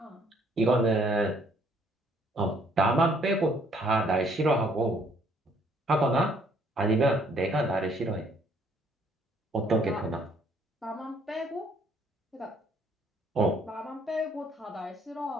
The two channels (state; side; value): normal; both; correlation 0.64